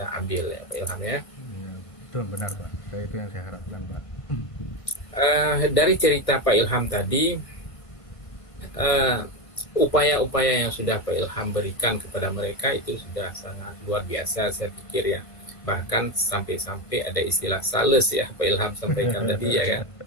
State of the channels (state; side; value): late; right; 1.5 ms